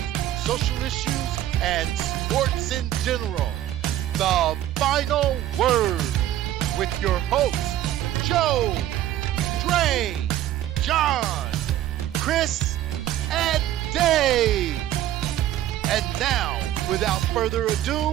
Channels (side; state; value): left; quieter; 12.9 dB